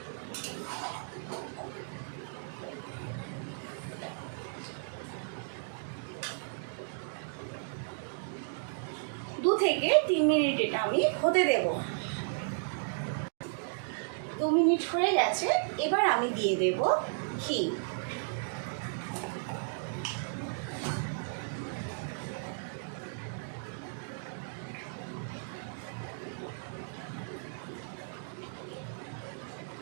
দু থেকে 3 মিনিট এটা আমি হতে দেব। 2 মিনিট হয়ে গেছে, এবার আমি দিয়ে দেব ঘি।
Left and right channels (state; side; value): silent; left; digital silence